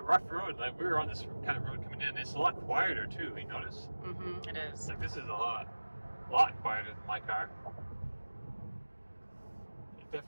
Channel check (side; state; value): both; inverted; correlation -1.00